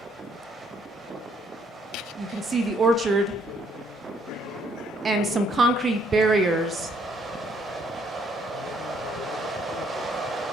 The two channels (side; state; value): both; normal; correlation 0.67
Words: You can see the orchard and some concrete barriers.